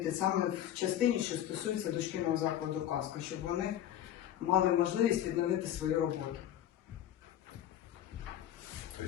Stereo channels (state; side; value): quieter; right; 11.4 dB